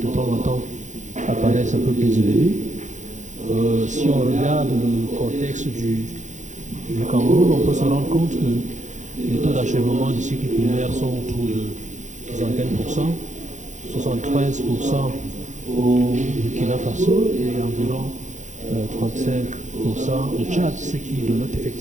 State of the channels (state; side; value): late; left; 0.35 ms